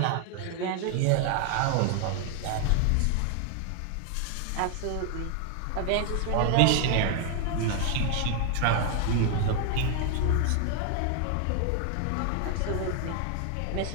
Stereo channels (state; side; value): different; both; correlation 0.00